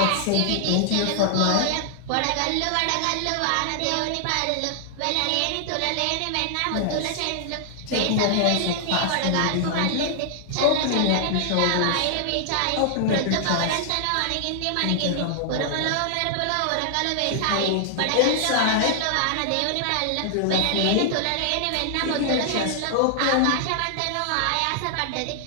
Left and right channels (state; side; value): different; both; correlation 0.00